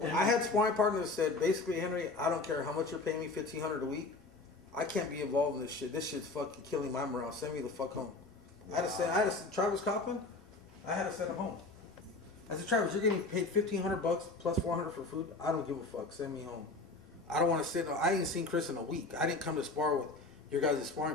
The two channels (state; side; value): quieter; right; 3.4 dB